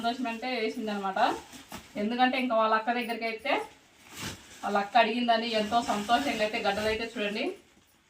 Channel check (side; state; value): both; identical; correlation 1.00